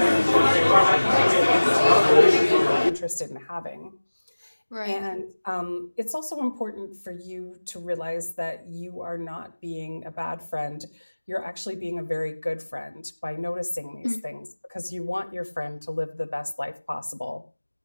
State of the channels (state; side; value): inverted; both; correlation -1.00